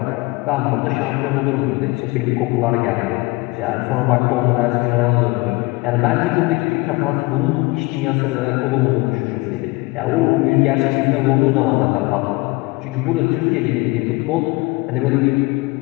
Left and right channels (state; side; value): quieter; right; 23.5 dB